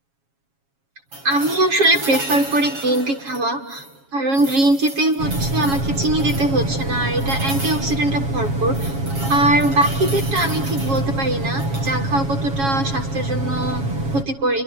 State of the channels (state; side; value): late; left; 7.3 ms